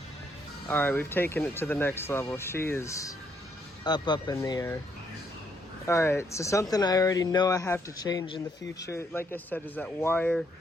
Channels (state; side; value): normal; both; correlation 0.73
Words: All right, we've taken it to the next level. She is up in the air. All right, so something I already know I have to change in the future, like I said, is that wire.